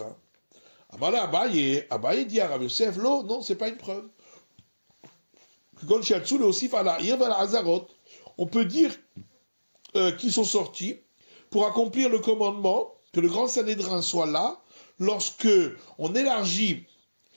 Amala Abaye dit à Rabbi Yosef, non, c'est pas une preuve. On peut dire qu'ils sont sortis pour accomplir le commandement, que le grand Sanhédrin soit là, lorsque on élargit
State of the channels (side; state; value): both; inverted; correlation -1.00